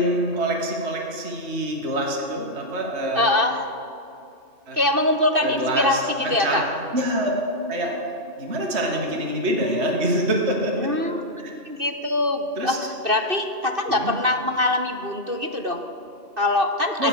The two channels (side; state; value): left; late; 2.6 ms